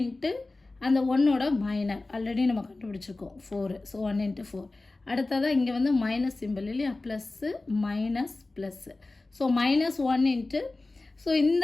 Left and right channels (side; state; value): right; quieter; 3.2 dB